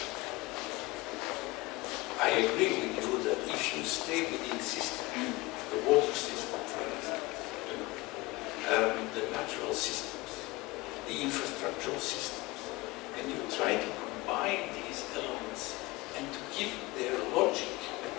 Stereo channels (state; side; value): quieter; right; 21.8 dB